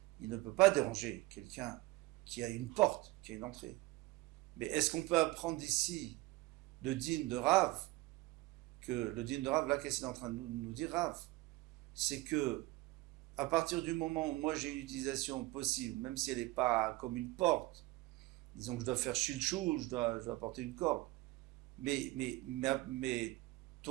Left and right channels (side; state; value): left; quieter; 20.3 dB